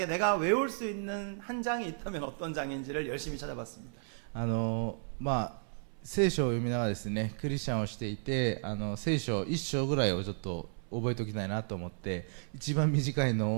내가 외울 수 있는 한 장이 있다면 어떤 장인지를 열심히 찾아봤습니다. 聖書を読みながらですね、クリスチャンをしていて聖書1章ぐらいをちょっと覚えておきたいなと思って一番短い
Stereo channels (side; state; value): left; silent; 56 dB below the other